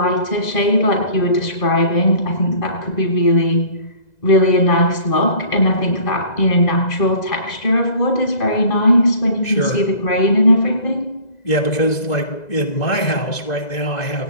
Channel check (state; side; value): late; right; 2.0 ms